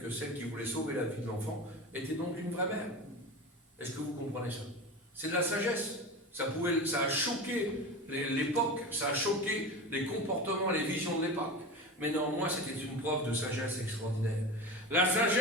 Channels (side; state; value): both; normal; correlation 0.27